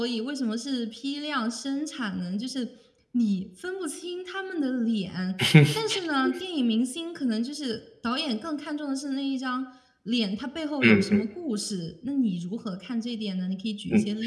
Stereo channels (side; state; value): both; identical; correlation 1.00